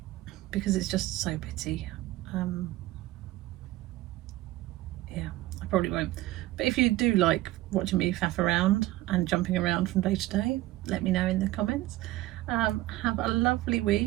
because it's just so bitty. Yeah, I probably won't. But if you do like watching me faff around and jumping around from day to day, let me know in the comments. Have a lovely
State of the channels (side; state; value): left; quieter; 16.9 dB